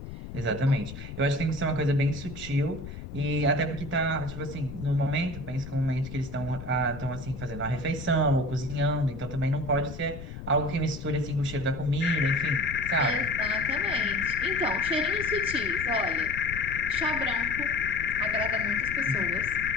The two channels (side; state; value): left; noise; rumble, 11 dB below the sound